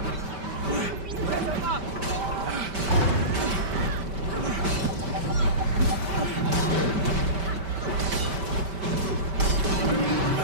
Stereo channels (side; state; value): left; late; 5.1 ms